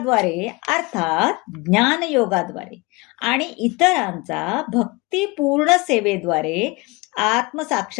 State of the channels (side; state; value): right; quieter; 25.3 dB